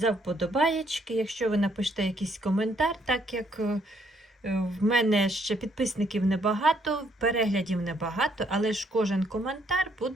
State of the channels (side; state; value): both; normal; correlation 0.70